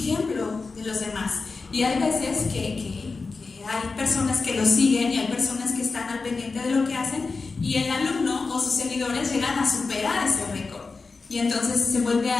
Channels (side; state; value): right; quieter; 4.2 dB